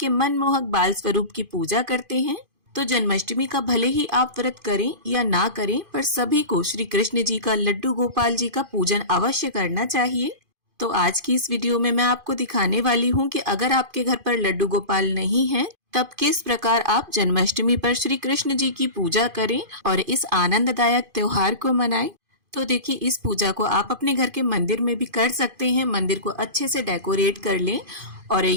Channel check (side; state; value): left; late; 2.5 ms